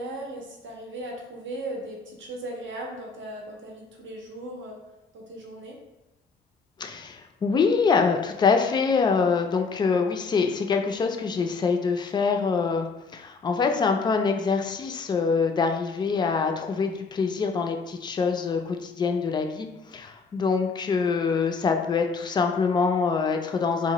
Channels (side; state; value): right; quieter; 4.7 dB